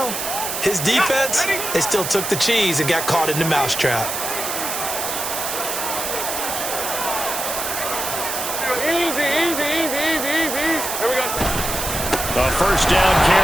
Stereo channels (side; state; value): right; noise; hiss, 4 dB below the sound